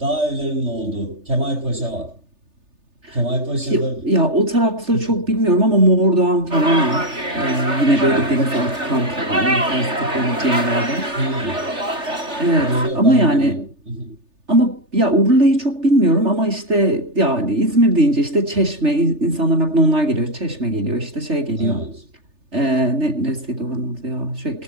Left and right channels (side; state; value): left; late; 3.3 ms